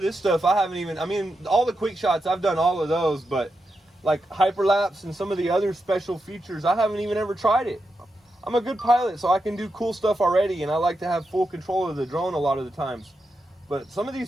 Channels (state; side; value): normal; both; correlation 0.87